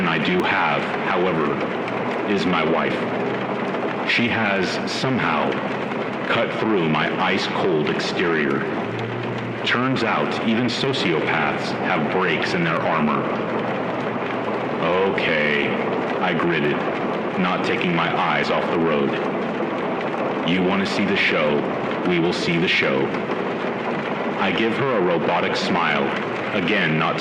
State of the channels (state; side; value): identical; both; correlation 1.00